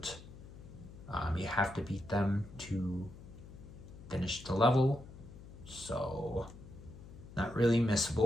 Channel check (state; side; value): noise; left; hum, 16 dB below the sound